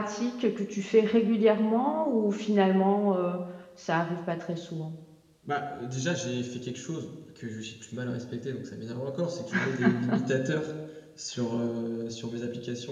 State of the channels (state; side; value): identical; both; correlation 1.00